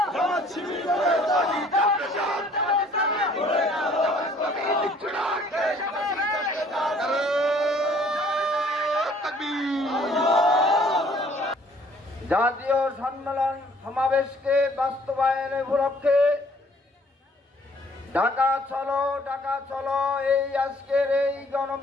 জাতীয় সম্মেলন সমাবেশকে বাস্তবায়নের উপলক্ষে ঢাকা চলো এই আজকের এই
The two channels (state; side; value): normal; both; correlation 0.59